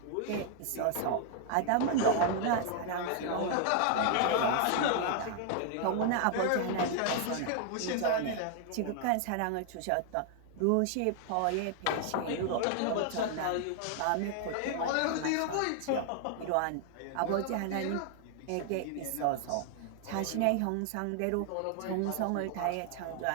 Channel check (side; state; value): both; different; correlation 0.00